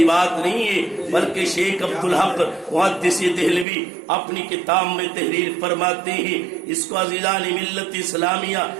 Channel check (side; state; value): left; drops out; at 3.7 s